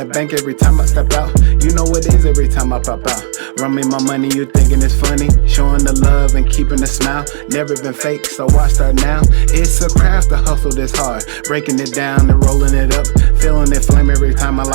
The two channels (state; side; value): silent; left; digital silence